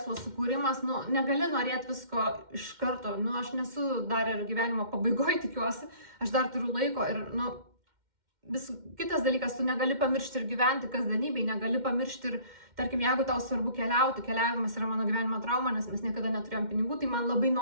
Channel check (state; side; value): late; left; 2.1 ms